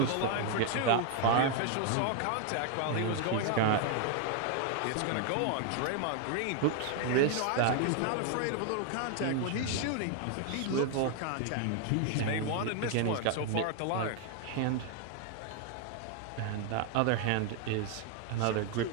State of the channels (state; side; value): different; both; correlation 0.00